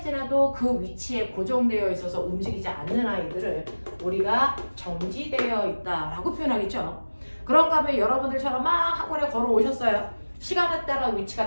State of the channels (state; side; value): inverted; both; correlation -1.00